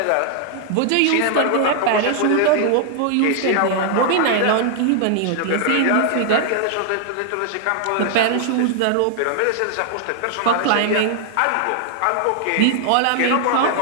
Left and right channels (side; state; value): both; different; correlation 0.00